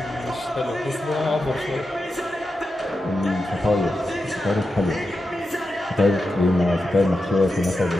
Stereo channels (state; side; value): normal; both; correlation 0.89